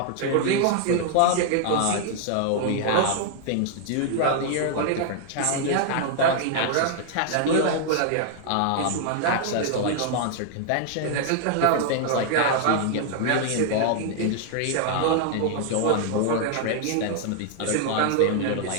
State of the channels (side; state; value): both; different; correlation 0.00